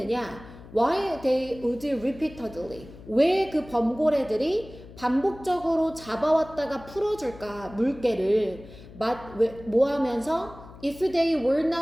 Why they would repeatedly. 왜 그 범고래들이 반복적으로 잡아왔다가 풀어줄까? 물개를 뭐 하면서 if they were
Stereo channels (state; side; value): noise; left; hum, 18 dB below the sound